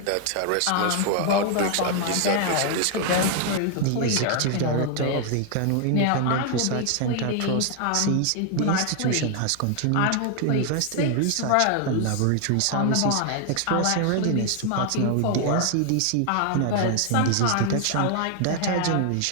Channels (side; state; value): both; different; correlation 0.00